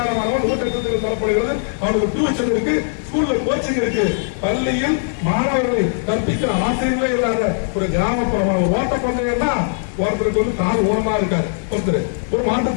மாணவன் ஊட்டச்சத்தில் தரப்படுகிறது. அவனுக்கு டியூஷன் இருக்கு, ஸ்கூல்ல கோச்சிங் இருக்கு, பள்ளியில் மாணவர்களை கற்பிக்கிற ஆசிரியர்களே இல்லாத ஒரு கிராமப்புறமான ஒரு ஓட்டப்பந்தயம் தான். ஒருத்தருக்கு வந்து கால் ஊனமா இருக்காரு, ஒருத்தர் ஒரு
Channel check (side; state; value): right; silent; digital silence